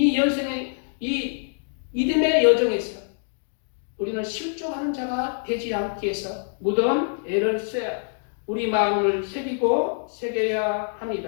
인생의 이 믿음의 여정에서 우리는 실족하는 자가 되지 않기 위해서 무덤 애를 써야, 우리 마음을 새겨야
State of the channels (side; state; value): right; silent; 62 dB below the other